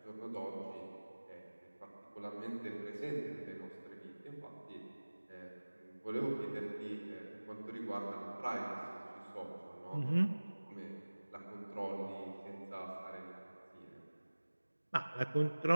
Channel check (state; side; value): inverted; both; correlation -1.00